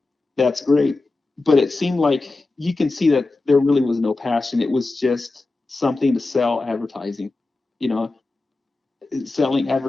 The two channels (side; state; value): right; quieter; 3.3 dB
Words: that's great. But it seemed like you can see that there really was no passion. It was just something to sell advertising, you know, selling